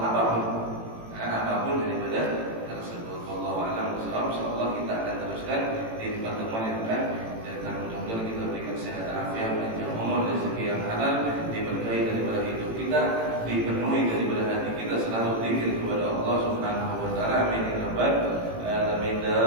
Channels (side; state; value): left; late; 18 ms